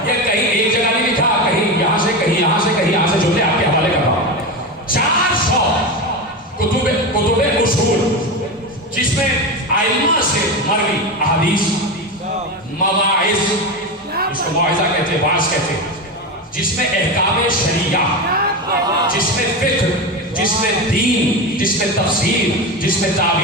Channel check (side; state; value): both; normal; correlation 0.19